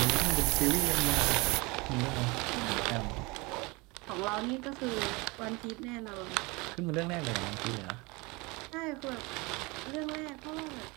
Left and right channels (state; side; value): quieter; left; 25.7 dB